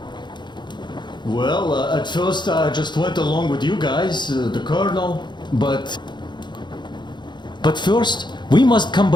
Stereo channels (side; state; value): right; late; 0.22 ms